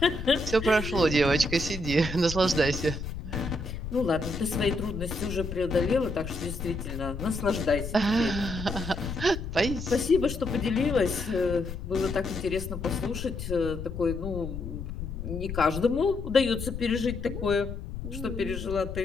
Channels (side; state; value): left; noise; rumble, 7 dB below the sound